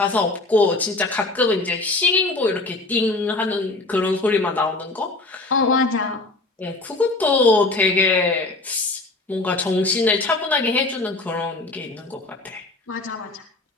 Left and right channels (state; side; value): quieter; right; 3.1 dB